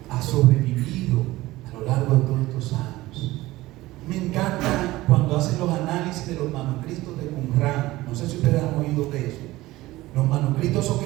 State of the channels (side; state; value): left; quieter; 18.0 dB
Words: ha sobrevivido a lo largo de todos estos años. Me encanta cuando hacen los análisis de los manuscritos de Qumran. No sé si ustedes han oído de eso. Los manuscritos esos que